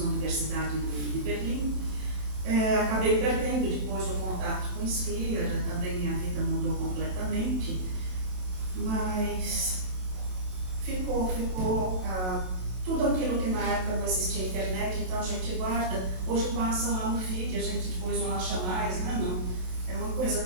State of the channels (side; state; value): left; late; 27 ms